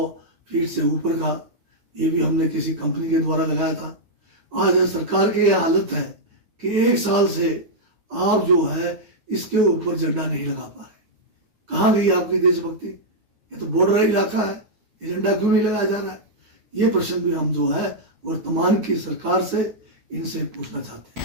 फीट से ऊपर का, ये भी हमने किसी कंपनी के द्वारा लगाया था। आज सरकार की यह हालत है कि 1 साल से आप जो है इसके ऊपर झंडा नहीं लगा पा रहे। कहाँ गई आपकी देशभक्ति? ये तो बॉर्डर इलाका है, ये झंडा क्यों नहीं लगाया जा रहा है? ये प्रश्न भी हम जो है वर्तमान की सरकार से इनसे पूछना चाहते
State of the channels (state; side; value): late; left; 9.4 ms